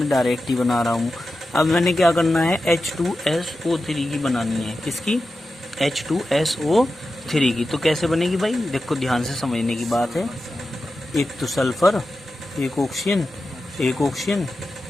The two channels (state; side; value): normal; both; correlation 0.92